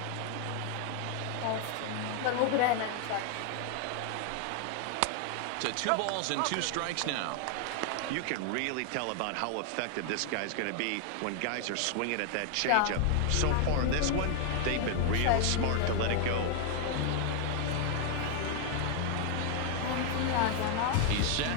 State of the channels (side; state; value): both; different; correlation 0.00